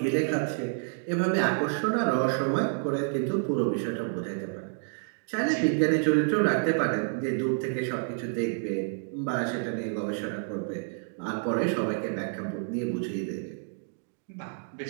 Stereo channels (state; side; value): silent; left; 59 dB below the other